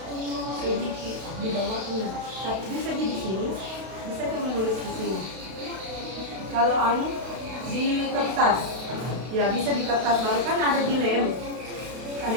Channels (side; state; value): left; late; 32 ms